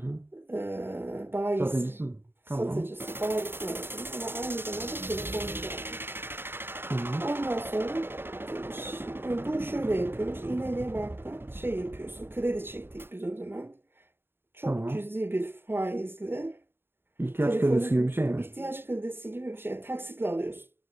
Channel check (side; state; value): left; late; 0.11 ms